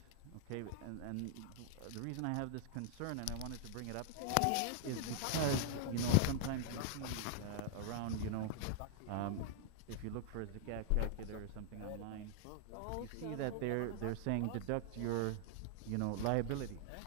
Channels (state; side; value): different; both; correlation 0.00